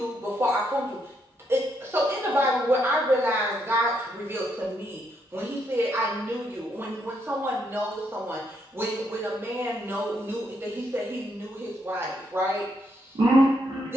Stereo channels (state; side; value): normal; both; correlation 0.76